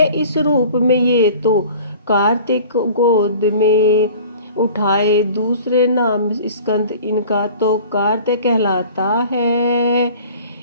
इस रूप में ये तो कार्तिक गोद में उठाए। दूसरे नाम स्कंद इनका तो कार्तिक कहलाता है।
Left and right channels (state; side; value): inverted; both; correlation -0.45